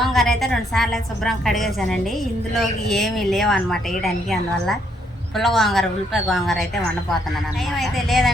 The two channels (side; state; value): both; normal; correlation 0.72